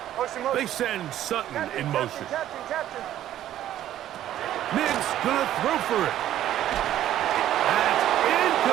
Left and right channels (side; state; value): left; quieter; 12.3 dB